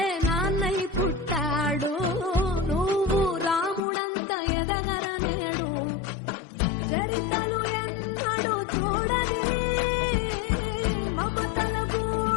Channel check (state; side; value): drops out; right; at 3.8 s